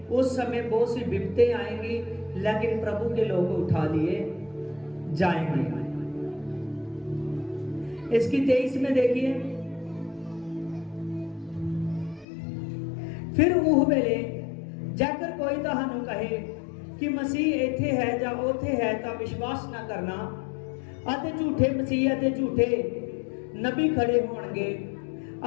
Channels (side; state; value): right; drops out; at 12.2 s